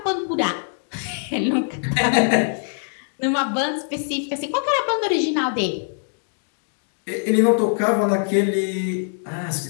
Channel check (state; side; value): silent; right; digital silence